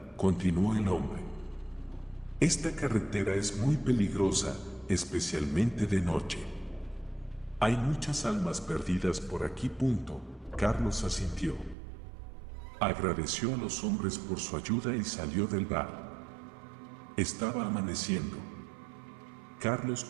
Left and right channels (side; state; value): left; drops out; at 11.8 s